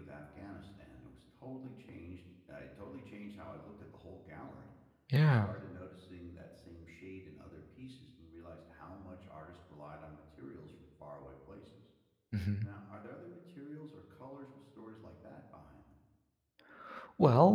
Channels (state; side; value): identical; both; correlation 1.00